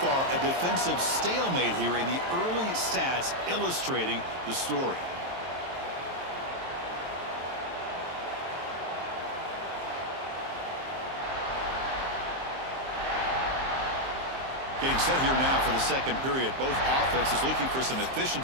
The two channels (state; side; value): late; left; 23 ms